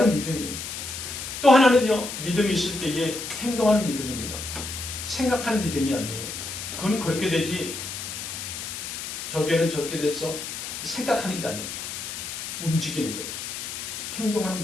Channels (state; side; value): noise; left; hiss, 7 dB below the sound